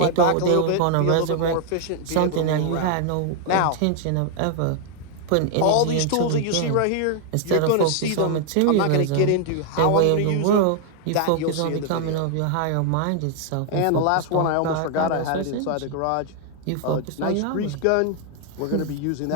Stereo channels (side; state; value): both; different; correlation 0.00